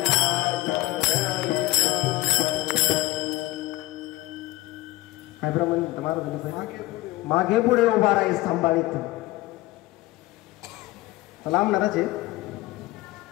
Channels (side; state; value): right; quieter; 18.3 dB